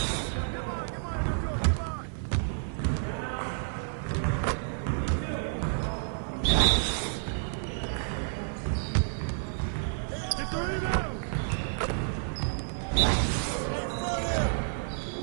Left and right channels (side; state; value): left; silent; 58 dB below the other